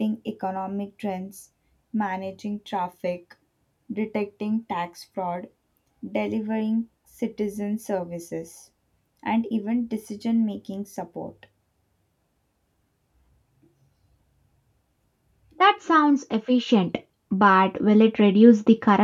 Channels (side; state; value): both; identical; correlation 1.00